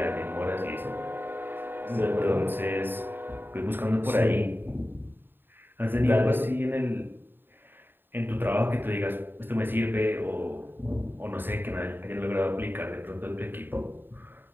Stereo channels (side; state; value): left; late; 0.096 ms